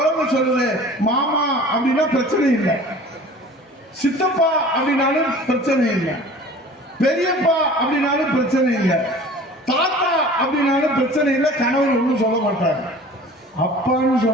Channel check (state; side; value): normal; both; correlation 0.44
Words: சொல்லுது, மாமா அப்படின்னா பிரச்சனை இல்லை, சித்தப்பா அப்படின்னாலும் பிரச்சனை இல்லை, பெரியப்பா அப்படின்னாலும் பிரச்சனை இல்லை, தாத்தா அப்படின்னாலும் பிரச்சனை இல்லை. கணவன் ஒன்றும் சொல்ல மாட்டாங்க. அப்பான்னு